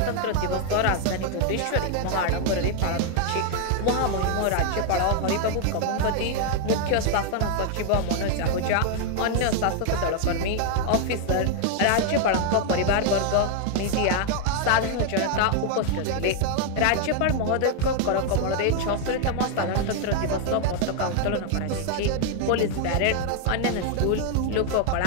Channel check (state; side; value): different; both; correlation 0.00